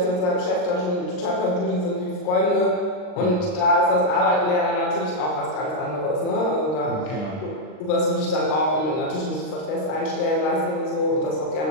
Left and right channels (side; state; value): right; late; 39 ms